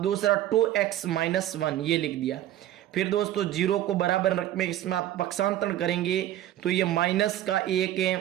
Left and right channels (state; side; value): quieter; left; 13.0 dB